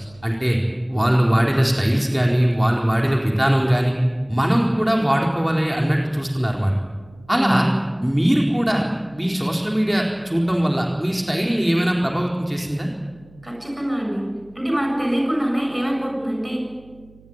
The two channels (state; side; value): noise; right; hum, 26 dB below the sound